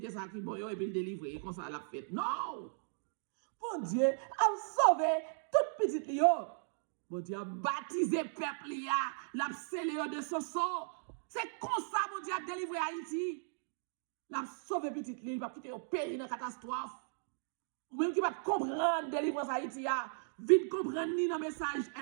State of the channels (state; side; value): silent; left; digital silence